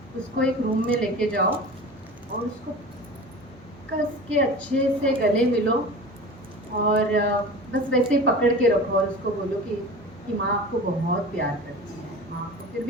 उसको एक रूम में लेके जाओ और उसको कस के अच्छे से गले मिलो और बस वैसे ही पकड़ के रखो और उसको बोलो कि माँ आपको बहुत प्यार करती है, माँ आपको। फिर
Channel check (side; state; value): both; normal; correlation 0.35